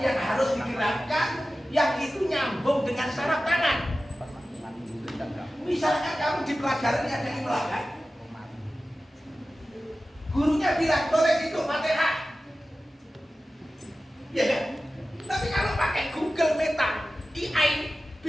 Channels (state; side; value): normal; both; correlation 0.95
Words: yang harus digerakkan, yang itu nyambung dengan saraf tangan. Misalkan kamu di pelajaran ada imla kan? Gurunya bilang tulis itu Fatihah. Ya kan? Tapi kalau pakai Google Meta, AI,